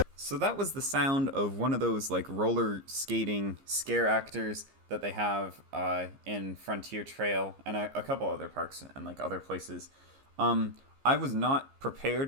So that was the sound of one of those like roller skating scare actors that they have in Frontier Trail and a couple other parks and like other places. I was not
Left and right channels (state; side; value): late; left; 15 ms